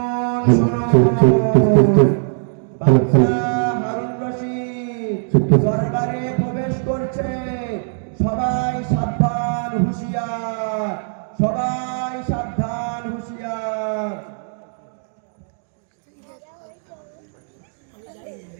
বাদশা হারুন রশিদ দরবারে প্রবেশ করছে। সবাই সাবধান, হুঁশিয়ার, সবাই সাবধান, হুঁশিয়ার।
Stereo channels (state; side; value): silent; left; digital silence